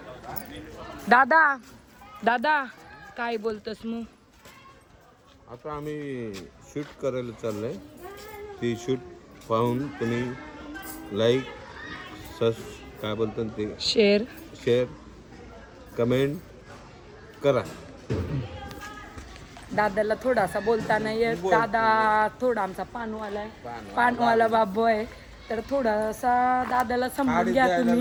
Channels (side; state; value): both; identical; correlation 1.00